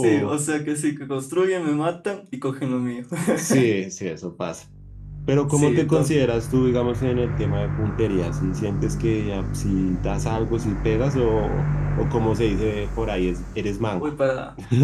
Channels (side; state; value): both; identical; correlation 1.00